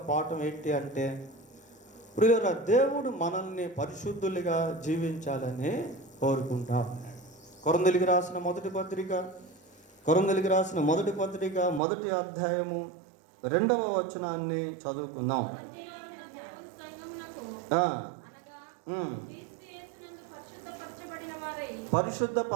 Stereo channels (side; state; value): left; drops out; at 11.8 s